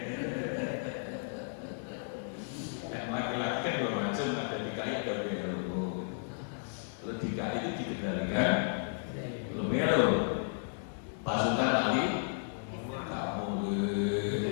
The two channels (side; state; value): right; silent; digital silence